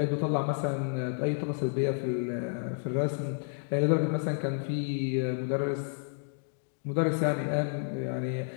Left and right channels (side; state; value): right; silent; digital silence